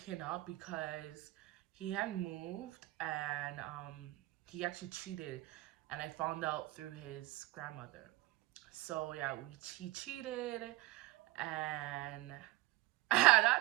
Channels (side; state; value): left; quieter; 18.9 dB